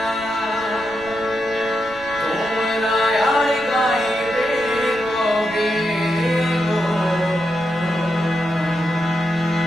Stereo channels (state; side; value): noise; right; rumble, 21 dB below the sound